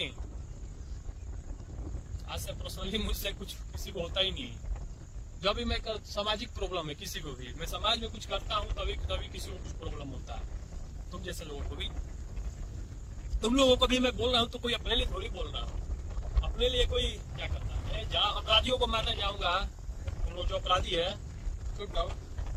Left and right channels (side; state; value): both; identical; correlation 1.00